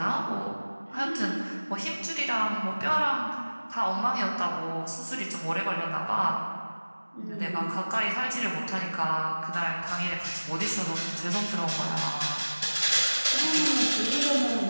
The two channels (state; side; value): inverted; both; correlation -1.00